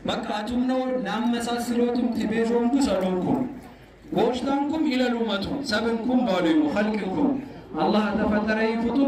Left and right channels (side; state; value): both; identical; correlation 1.00